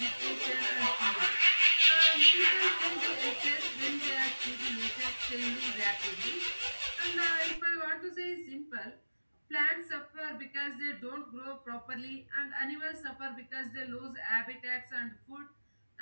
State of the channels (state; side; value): inverted; both; correlation -1.00